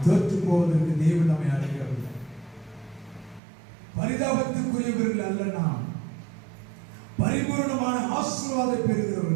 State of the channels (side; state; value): left; drops out; at 3.4 s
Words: தோற்று போவதற்கு தேவன் நம்மை அழைக்கவில்லை. பரிதாபத்துக்குரியவர்கள் அல்ல, நாம் பரிபூர்ணமான ஆசீர்வாதத்தை